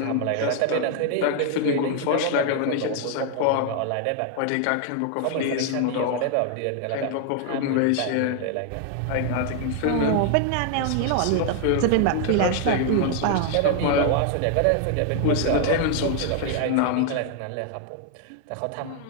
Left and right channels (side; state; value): both; different; correlation 0.00